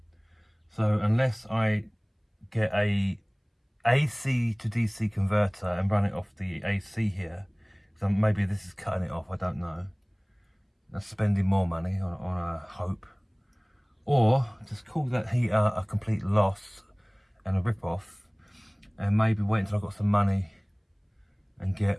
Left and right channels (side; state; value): both; identical; correlation 1.00